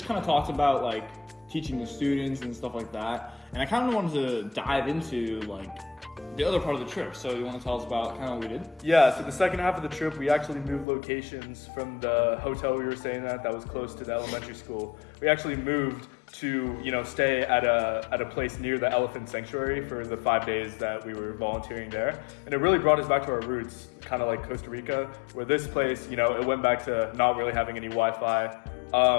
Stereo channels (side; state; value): right; drops out; at 10.9 s